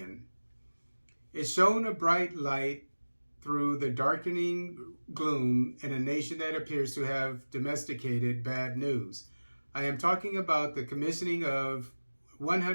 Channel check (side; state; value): both; inverted; correlation -1.00